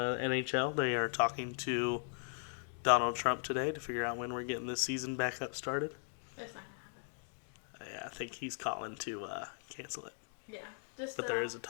NHL. They are talking to Donald Trump today to figure out when we're getting this season back up started. It's not going to happen. Yeah, I think he's calling to cancel it. Yeah. But there is a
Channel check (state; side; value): silent; right; 52 dB below the other